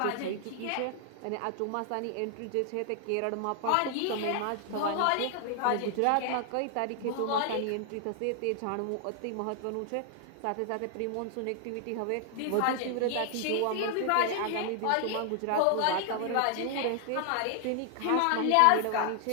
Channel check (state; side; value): different; both; correlation 0.00